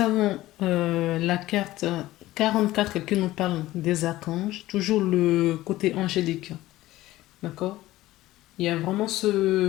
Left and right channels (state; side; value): quieter; right; 16.4 dB